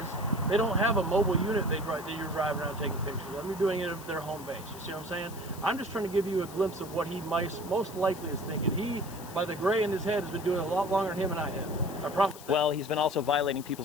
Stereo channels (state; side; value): noise; left; hiss, 17 dB below the sound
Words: they don't have a mobile unit that you're driving around taking pictures of. They're doing it at their home base. You see what I'm saying? I'm just trying to give you a glimpse of what he most likely is thinking. He, by the gray in his head, has been doing it a lot longer than him and I have. I promise that. Well, he's been also violating